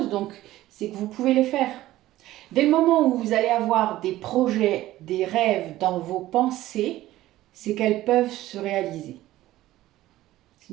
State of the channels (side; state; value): left; quieter; 15.5 dB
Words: donc c'est que vous pouvez les faire. Dès le moment où vous allez avoir des projets, des rêves dans vos pensées, c'est qu'elles peuvent se réaliser.